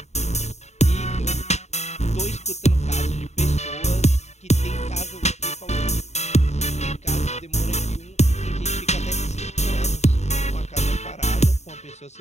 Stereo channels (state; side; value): late; right; 0.32 ms